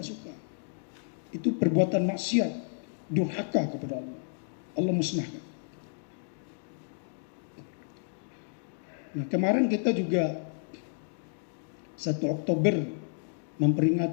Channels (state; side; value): silent; right; digital silence